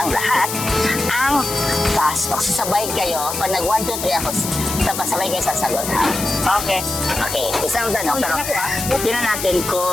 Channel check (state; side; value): noise; left; hiss, 5 dB below the sound